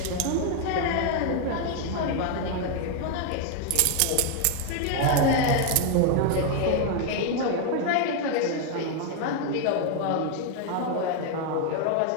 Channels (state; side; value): different; both; correlation 0.00